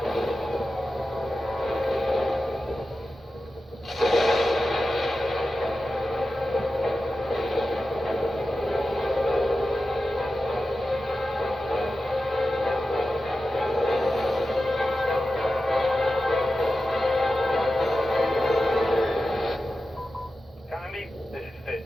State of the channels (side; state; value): both; normal; correlation 0.92